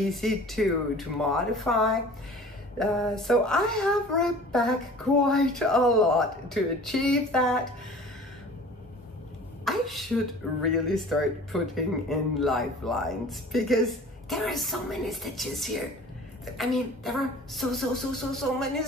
to modify. So I have ripped back quite a lot to achieve that. I should really start putting in lifelines, because there are so many stitches here. I mean, there are so many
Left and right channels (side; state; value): both; normal; correlation 0.44